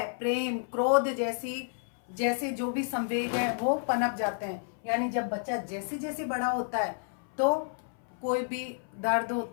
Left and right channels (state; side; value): silent; right; 57 dB below the other